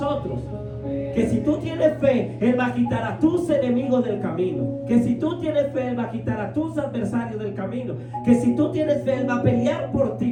Que si tú tienes fe, Él va a quitar a tus enemigos del camino. Que si tú tienes fe, Él va a quitar a tus adversarios del camino. Que si tú tienes fe, Él va a pelear por ti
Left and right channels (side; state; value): both; identical; correlation 1.00